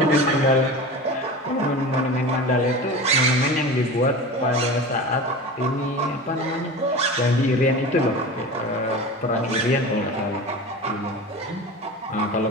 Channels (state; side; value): normal; both; correlation 0.32